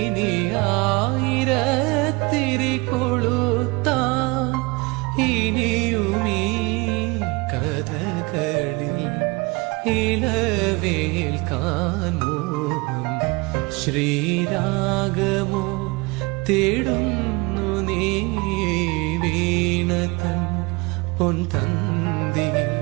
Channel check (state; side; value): quieter; left; 25.7 dB